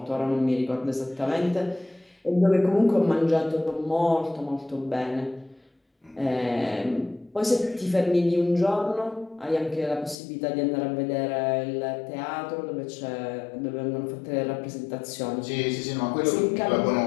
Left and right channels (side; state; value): right; drops out; at 10.2 s